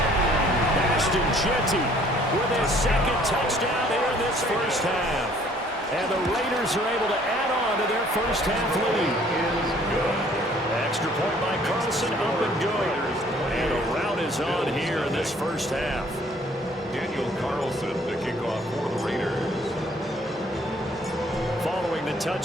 Ashton Genty with his 2nd touchdown here in this first half. And the Raiders are able to add on to their first half lead. Extra point by Carlson, up and good. And a rout is on here in this first half. Daniel Carlson to kick off for the Raiders. Following the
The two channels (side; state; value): both; normal; correlation 0.59